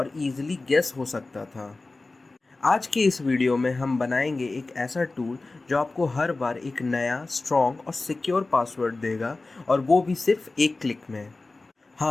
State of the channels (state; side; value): quieter; right; 3.4 dB